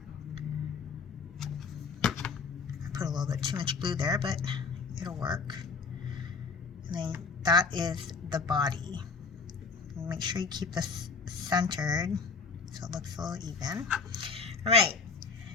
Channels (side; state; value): right; quieter; 4.7 dB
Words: I put a little bit too much glue there, but it'll work. And then that is the body. Make sure you keep this centered so it looks a little even. All right,